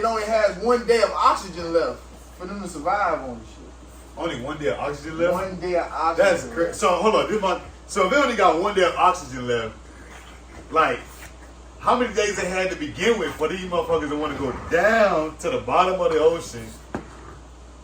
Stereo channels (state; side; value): identical; both; correlation 1.00